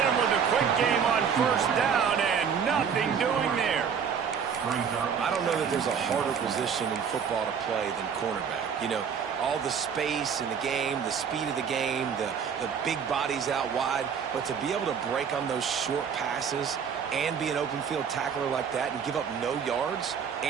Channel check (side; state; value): left; quieter; 7.0 dB